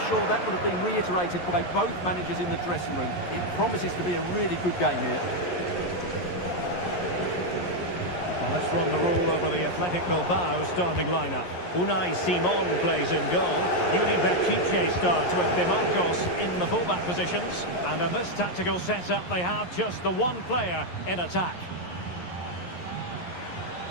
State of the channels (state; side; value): late; right; 11 ms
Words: sure that would have been reiterated by both managers in the dressing room. It promises to be a really good game here. Well, let's run the rule over the Athletic Bilbao starting lineup. Unai Simon plays in goal. Yuri Berchiche starts with De Marcos in the fullback positions. And in this tactical setup, they have just the one player in attack.